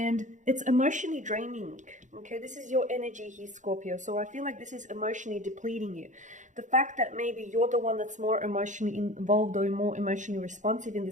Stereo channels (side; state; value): left; late; 0.36 ms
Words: it's emotionally draining, okay? This is your energy here, Scorpio. So I feel like this is emotionally depleting you. The fact that maybe you're the one that's more emotionally involved or more emotionally responsive in